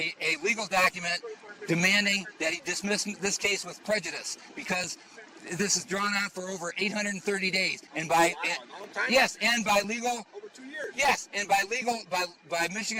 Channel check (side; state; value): both; identical; correlation 1.00